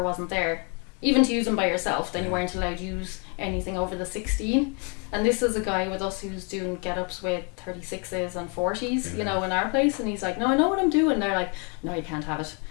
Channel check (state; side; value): quieter; right; 35.7 dB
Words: wasn't there, even to use them by yourself, then you weren't allowed to use anything over the 16. And this is a guy with us who's doing get-ups with 36s and 40s, you know, in our place, and he's like, no, I know what I'm doing. They're like, no, you can't have it.